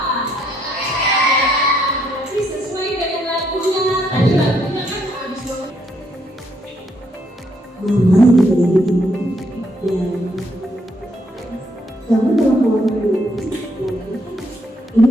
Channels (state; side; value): normal; both; correlation 0.73